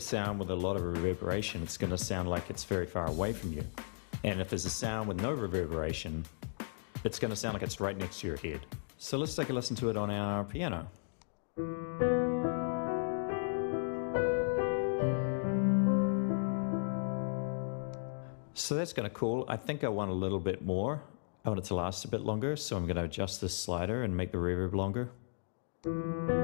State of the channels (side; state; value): right; silent; digital silence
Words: sound with a lot of reverberation, it's going to sound like it's very far away from you. And if there's a sound with no reverberation, it's going to sound like it's right next to your head. So let's take a listen to it on our piano. So that's kind of cool. I think I want a little bit more. I want it to last a bit longer, so I'm going to adjust this slider and make the reverb longer.